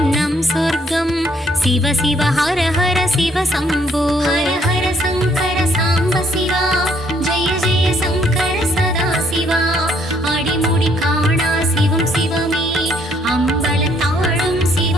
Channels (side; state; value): both; normal; correlation 0.67